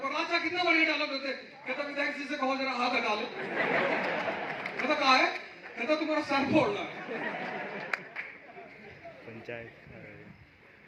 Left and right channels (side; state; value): both; identical; correlation 1.00